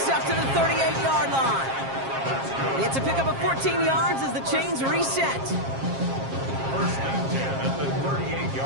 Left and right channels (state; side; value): late; left; 7.4 ms